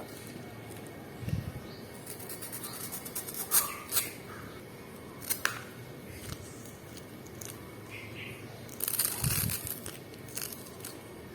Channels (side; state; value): both; identical; correlation 1.00